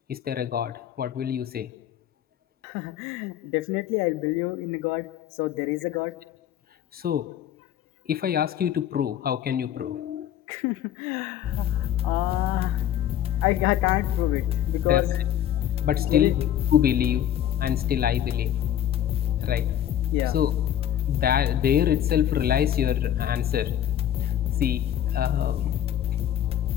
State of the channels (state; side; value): quieter; right; 10.8 dB